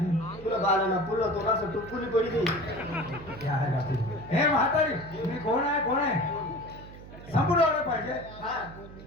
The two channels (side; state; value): right; noise; hum, 16 dB below the sound